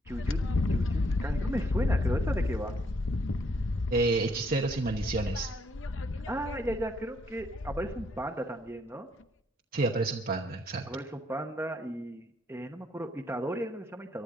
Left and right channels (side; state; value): both; normal; correlation 0.70